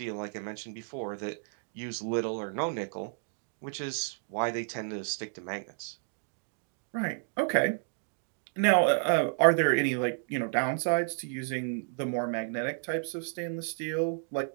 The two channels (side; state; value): left; silent; digital silence